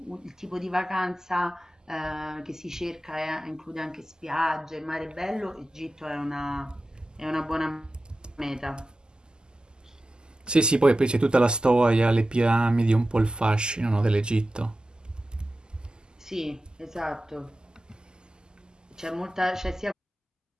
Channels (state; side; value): normal; both; correlation 0.93